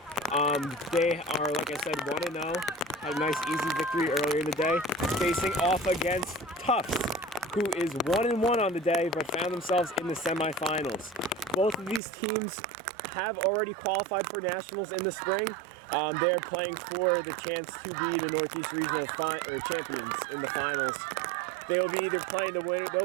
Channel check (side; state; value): left; drops out; at 12.0 s